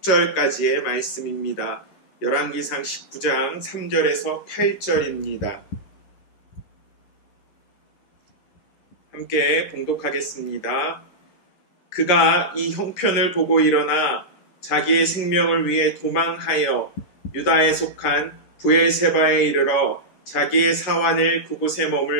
8절까지의 말씀입니다. 열왕기상 19장 3절에서 8절입니다. 함께 봉독하겠습니다. 그가 이 형편을 보고 일어나 자기의 생명을 위해 도망하여 유다에 속한 브엘세바에 이르러 자기의 사환을 그곳에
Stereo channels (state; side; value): late; right; 11 ms